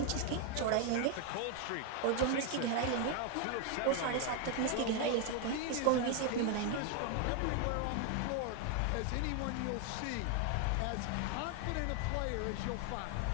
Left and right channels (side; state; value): both; different; correlation 0.01